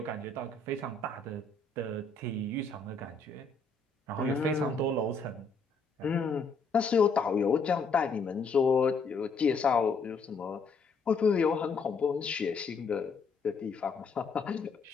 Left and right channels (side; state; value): right; quieter; 4.2 dB